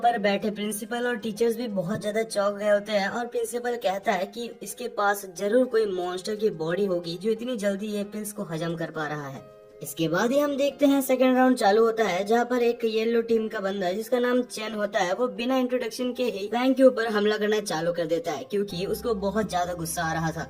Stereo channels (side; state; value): both; identical; correlation 1.00